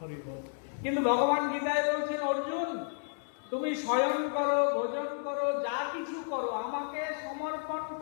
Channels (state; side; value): silent; right; 56 dB below the other